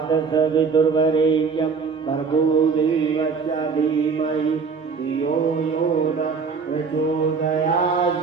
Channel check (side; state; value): left; quieter; 5.3 dB